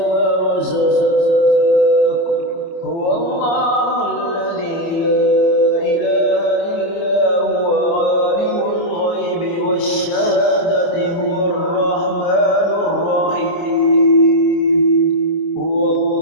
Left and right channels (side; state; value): right; late; 28 ms